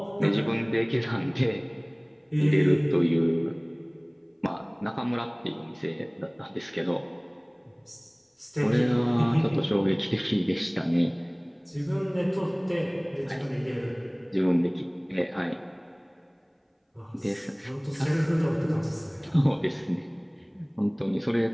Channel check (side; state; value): both; identical; correlation 1.00